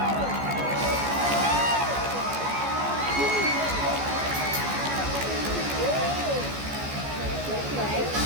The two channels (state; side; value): late; left; 14 ms